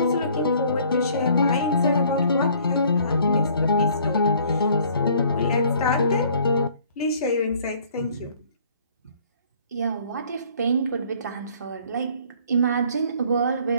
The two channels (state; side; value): inverted; both; correlation -0.57